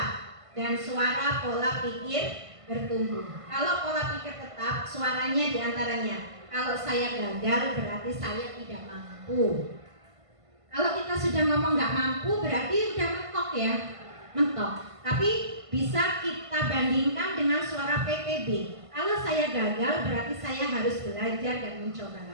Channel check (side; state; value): left; late; 1.5 ms